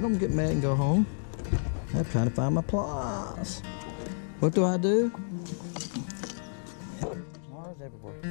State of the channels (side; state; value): right; silent; digital silence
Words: mad and go home. I'm trying to find my pliers. What do I do? Pliers everywhere.